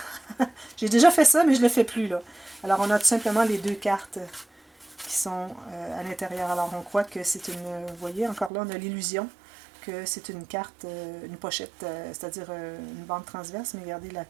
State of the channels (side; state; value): left; drops out; at 8.5 s